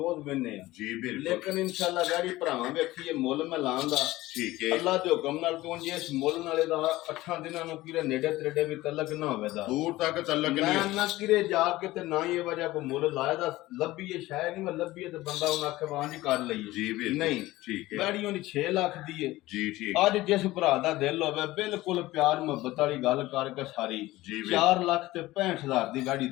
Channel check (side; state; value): right; quieter; 17.7 dB